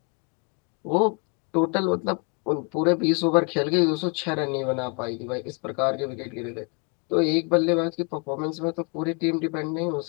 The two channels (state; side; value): quieter; right; 33.7 dB